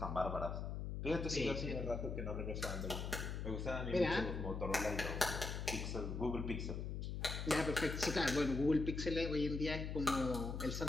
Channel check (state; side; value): noise; left; hum, 4 dB below the sound